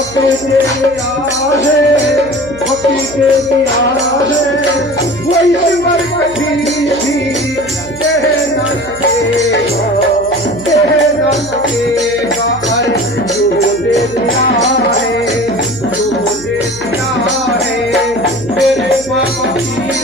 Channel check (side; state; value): right; noise; hum, 18 dB below the sound